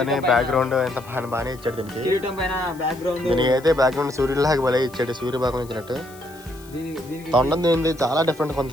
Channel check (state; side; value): noise; left; hiss, 23 dB below the sound